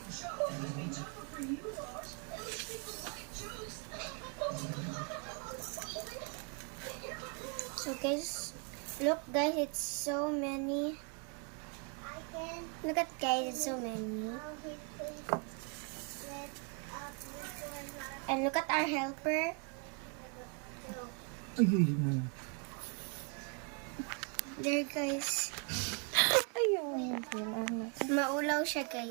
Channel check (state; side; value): quieter; left; 37.4 dB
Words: So guys, look guys, it's so many. Look at guys, it's so many. And look at our helper. There guys. Ayun, sila na. Maulaw siya